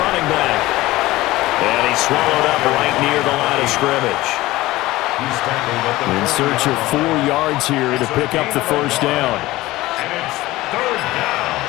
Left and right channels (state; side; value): quieter; right; 18.0 dB